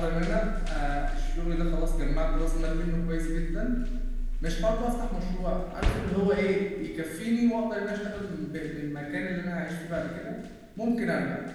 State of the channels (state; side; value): identical; both; correlation 1.00